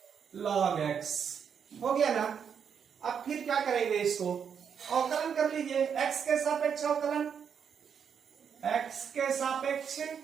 log x, हो गया ना। अब फिर क्या करेंगे, इसको अवकलन कर लीजिए, x के सापेक्ष अवकलन, x के सापेक्ष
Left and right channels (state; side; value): quieter; left; 7.4 dB